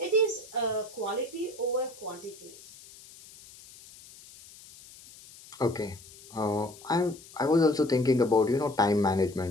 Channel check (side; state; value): left; noise; hiss, 20 dB below the sound